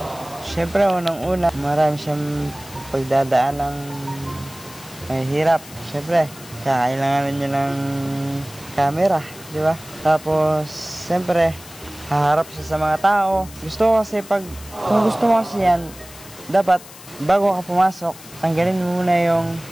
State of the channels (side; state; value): left; noise; hiss, 18 dB below the sound